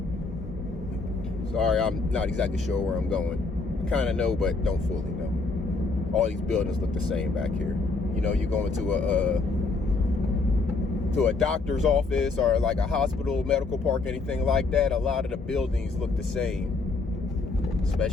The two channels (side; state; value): right; quieter; 3.8 dB